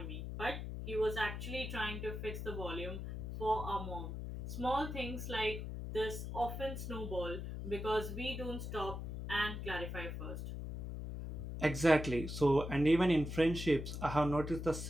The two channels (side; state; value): left; noise; hum, 6 dB below the sound